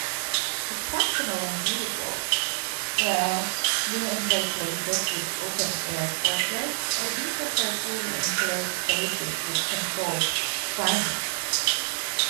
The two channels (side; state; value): left; silent; digital silence